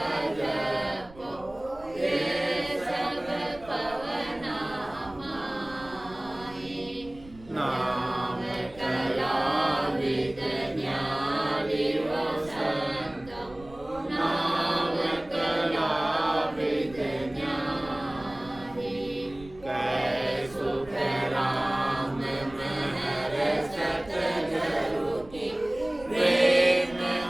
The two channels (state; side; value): noise; right; rumble, 20 dB below the sound